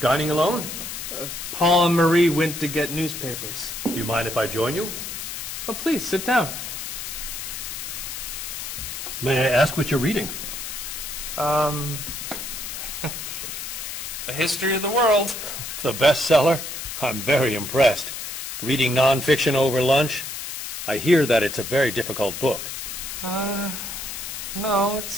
alone? Paul and Marie went to get newspapers. Do you mind if I join you? Oh, please, sit down. May I ask what you're reading? A History of the World. The bestseller? I'm very impressed. Reading nonfiction over lunch? I hear that it's a very difficult book. No,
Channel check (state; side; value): noise; left; hiss, 7 dB below the sound